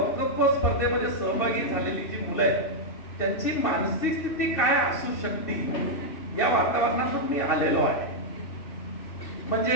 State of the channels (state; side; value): late; right; 2.7 ms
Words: स्पर्धेमध्ये सहभागी झालेली जी मुलं आहेत त्यांची मानसिक स्थिती काय असू शकते या वातावरणातून मी आलेलो आहे. म्हणजे